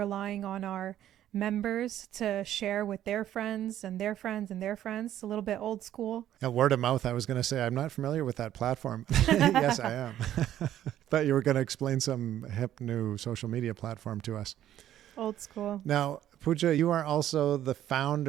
on our members to share with their friends and their friends and their friends. A little bit old school. Word of mouth, I was going to say, I'm not familiar with that platform. Yes, I am. Thought you were going to explain some hip new social media platform to us. Old school. Now, Pooja, you are also the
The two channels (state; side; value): quieter; left; 11.9 dB